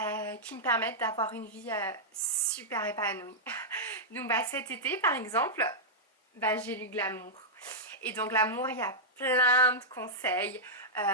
qui me permettent d'avoir une vie super épanouie. Donc cet été par exemple, j'ai lu Glamour. Et dans Glamour, il y a plein de conseils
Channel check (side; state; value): both; normal; correlation -0.10